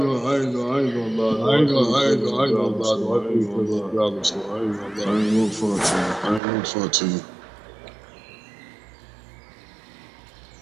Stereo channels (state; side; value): drops out; left; at 6.4 s